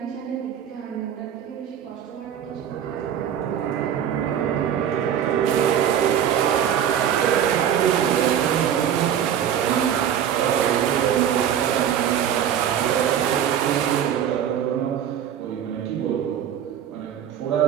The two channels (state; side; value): quieter; left; 9.5 dB